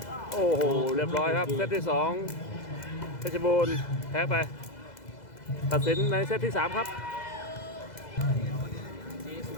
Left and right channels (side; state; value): right; late; 2.0 ms